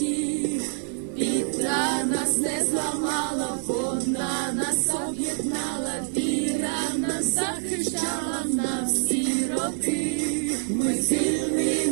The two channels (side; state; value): left; silent; digital silence